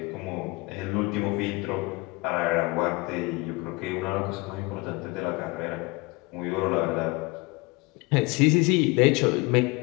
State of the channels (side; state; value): right; quieter; 24.8 dB